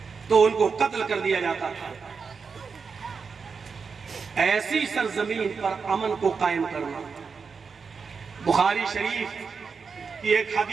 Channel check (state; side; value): quieter; left; 5.4 dB